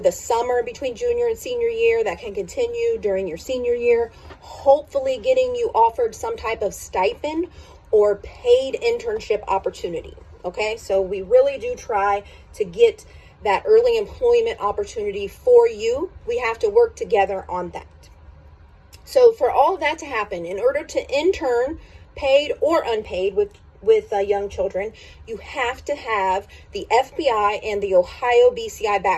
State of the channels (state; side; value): identical; both; correlation 1.00